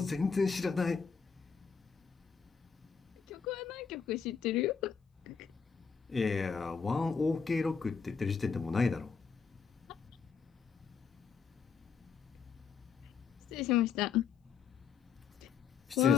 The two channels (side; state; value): right; quieter; 6.1 dB